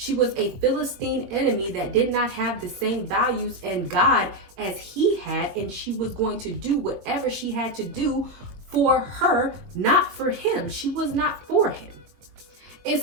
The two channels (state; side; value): late; left; 21 ms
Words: was a Philistine enemy that did not have the same values and God as he had, and she was going to do whatever she had to do for her, not for him. She was not for him. And